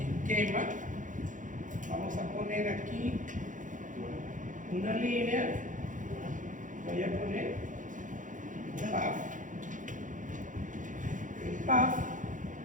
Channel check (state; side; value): late; left; 0.37 ms